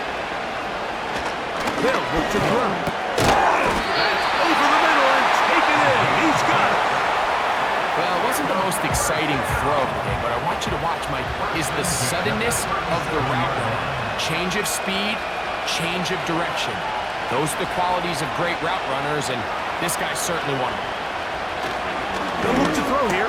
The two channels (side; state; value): both; identical; correlation 1.00